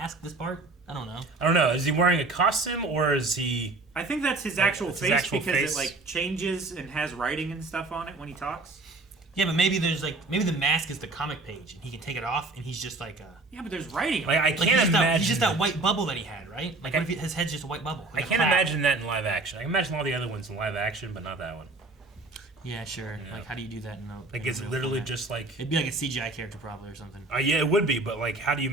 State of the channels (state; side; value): quieter; left; 3.3 dB